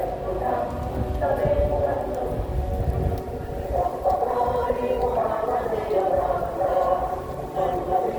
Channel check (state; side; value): identical; both; correlation 1.00